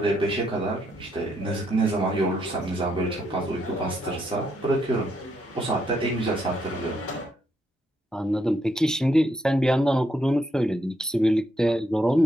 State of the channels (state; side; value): normal; both; correlation 0.76